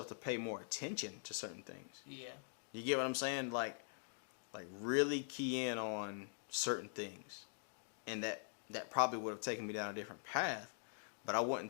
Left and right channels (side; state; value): right; silent; digital silence